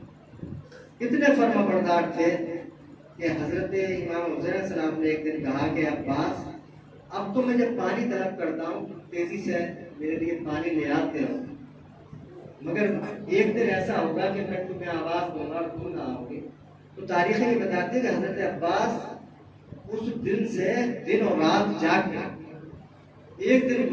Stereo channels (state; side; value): identical; both; correlation 1.00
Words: کتنے فرما بردار تھے کہ حضرت امام حسین علیہ السلام نے ایک دن کہا کہ عباس اب تو میں جب پانی طلب کرتا ہوں تیزی سے میرے لیے پانی لے آتے ہو، مگر ایک دن ایسا ہوگا کہ میں تمہیں آواز دوں گا اور تم نہ آؤ گے. تو تاریخ یہ بتاتے ہیں کہ حضرت عباس اس دن سے دن اور رات جاگ گئے. ایک دن